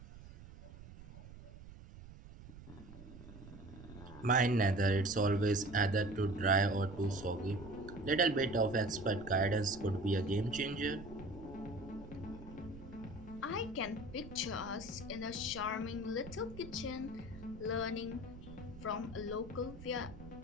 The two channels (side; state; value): right; noise; rumble, 15 dB below the sound